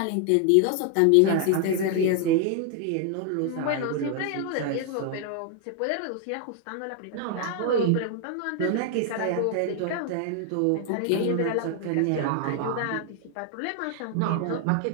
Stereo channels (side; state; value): both; different; correlation 0.00